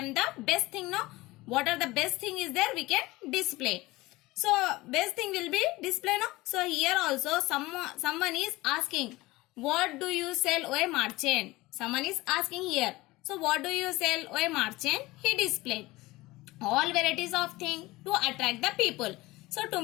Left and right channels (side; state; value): right; quieter; 20.0 dB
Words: the best thing. No, what are the best thing is there? We can display. So best thing will be display. No. So here also someone is asking, what do you sell, O merchant? Someone is asking here. So what do you sell, O merchant? He displayed all varieties of things to attract the people. So to